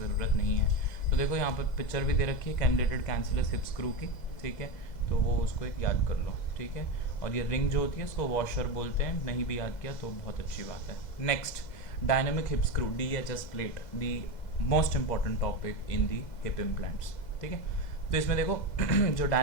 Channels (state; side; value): late; right; 2.0 ms